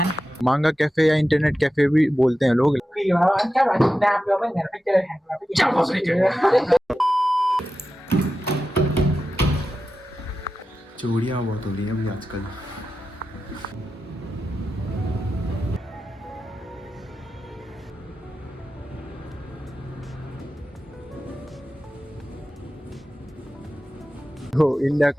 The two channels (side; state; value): both; normal; correlation 0.92